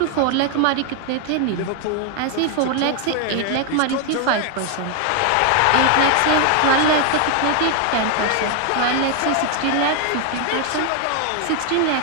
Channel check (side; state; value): both; different; correlation 0.01